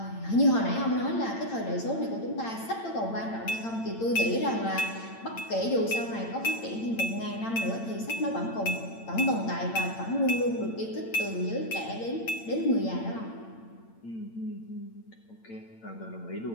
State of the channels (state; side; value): late; right; 8.9 ms